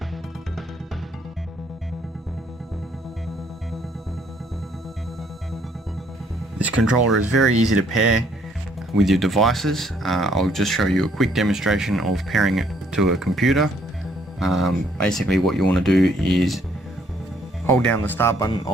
This controller is very easy to pair with your devices. I'll just show you a quick demonstration of pairing it to a computer. Basically what you want to do is hold down the start button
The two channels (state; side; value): normal; both; correlation 0.66